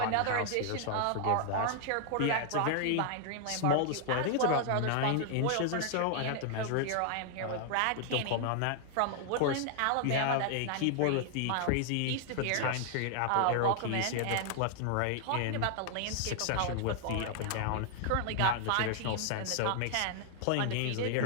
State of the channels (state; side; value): different; both; correlation 0.00